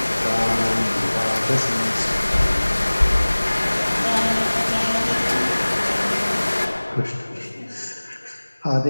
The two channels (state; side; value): inverted; both; correlation -1.00